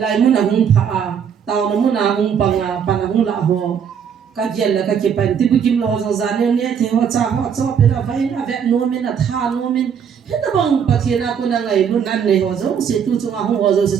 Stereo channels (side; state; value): left; quieter; 7.6 dB